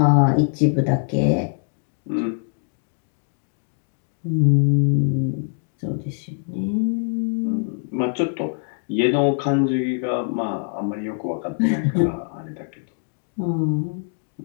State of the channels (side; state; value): right; silent; digital silence